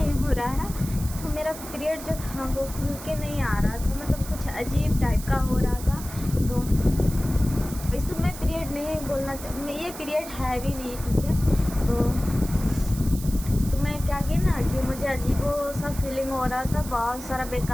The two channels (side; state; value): right; noise; hiss, 13 dB below the sound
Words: हो रहा है। तो मेरा पीरियड जो था वो खुल के नहीं आ रहा था, मतलब कुछ अजीब टाइप का हो रहा था। तो इसमें पीरियड नहीं बोलना चाहिए, ये पीरियड है भी नहीं। ठीक है, तो मैं क्या की ना कि मुझे अजीबो सा फीलिंग हो रहा था, बहुत सारा